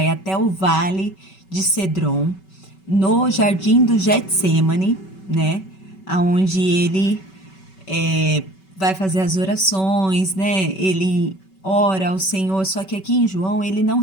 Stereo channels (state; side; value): late; right; 5.2 ms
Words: até o vale de Cedron, no jardim do Getsêmani, né? Onde ele vai fazer as orações, né? Ele ora ao Senhor, só que aqui em João ele não